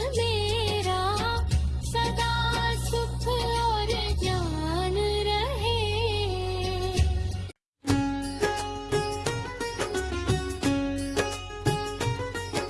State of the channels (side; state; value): both; identical; correlation 1.00